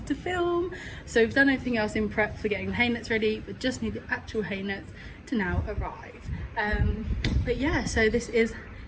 to film. So we've done everything else in prep for getting the hay nets ready, but just need the actual hay nets to now arrive. But yeah, so this is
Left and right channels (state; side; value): identical; both; correlation 1.00